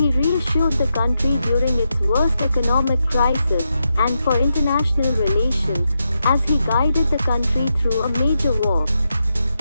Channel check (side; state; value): both; inverted; correlation -0.86